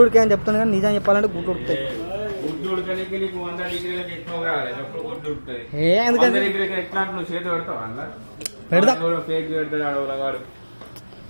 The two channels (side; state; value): both; inverted; correlation -1.00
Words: ఉడికాయి అని చెప్తాను కానీ నిజం చెప్పాలంటే గుడ్లు ఉడుకుతాయి. ఎందుకంటే పెడతా